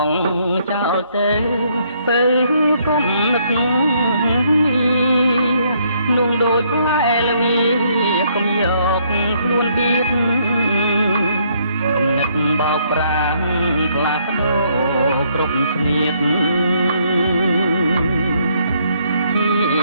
ងចោលទៅគុំនឹកនោះដូចផ្លែល្ងាកុំយកខ្លួនដៀតគំនិតបោកប្រាំងខ្លាស្ដោគ្រប់ស្នៀតជី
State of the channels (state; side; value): inverted; both; correlation -0.70